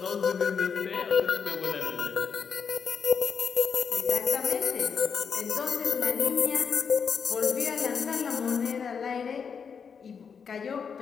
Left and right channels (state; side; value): quieter; right; 6.4 dB